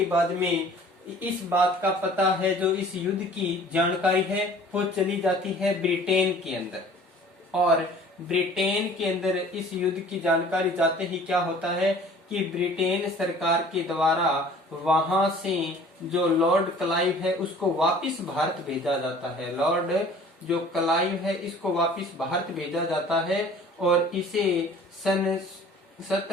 बाद में इस बात का पता है, जो इस युद्ध की जानकारी है वो चली जाती है ब्रिटेन के अंदर। और ब्रिटेन के अंदर इस युद्ध की जानकारी जाते ही क्या होता है कि ब्रिटेन सरकार के द्वारा वहां से जो लॉर्ड क्लाइव है उसको वापस भारत भेजा जाता है। लॉर्ड जो क्लाइव है इसको वापस भारत भेजा जाता है और इसे सन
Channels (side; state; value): both; normal; correlation 0.49